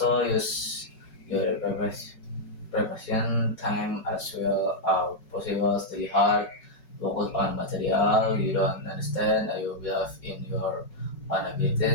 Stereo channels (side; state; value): right; late; 5.4 ms